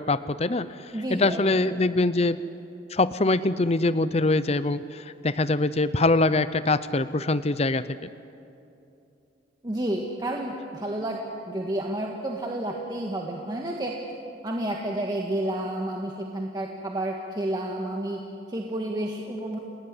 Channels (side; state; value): both; normal; correlation 0.47